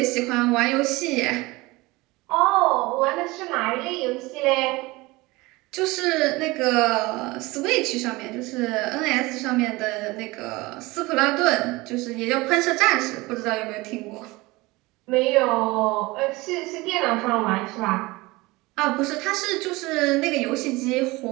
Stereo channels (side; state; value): left; quieter; 21.8 dB